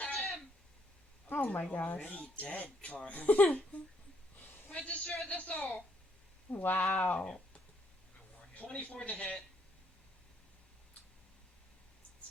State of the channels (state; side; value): normal; both; correlation 0.71